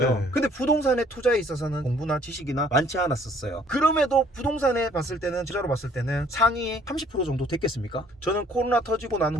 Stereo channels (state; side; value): normal; both; correlation 0.59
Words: 네. 근데 부동산의 투자에 있어서는 공부나 지식이나 많지 않았었어요. 그럼에도 부동산에 봤을 때는, 투자로 봤을 때는 상위 30% 정도 됐겠습니까? 저는 코로나 터지고 난